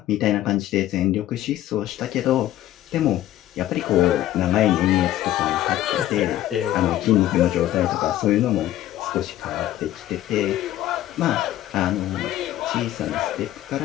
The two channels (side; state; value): right; quieter; 13.6 dB